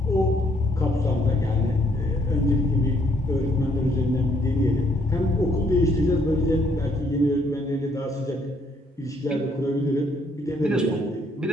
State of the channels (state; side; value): normal; both; correlation 0.69